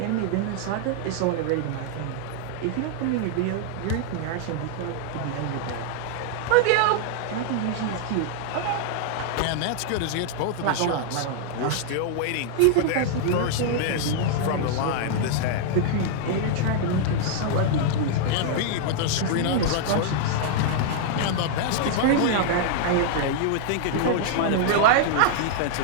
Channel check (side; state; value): both; different; correlation -0.01